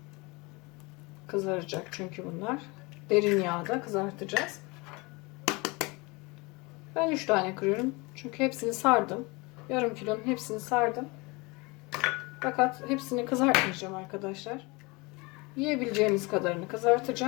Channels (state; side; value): quieter; right; 26.1 dB